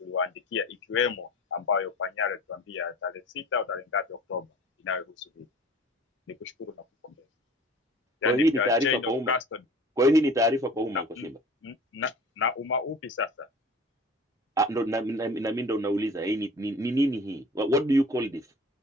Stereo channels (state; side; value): normal; both; correlation 0.43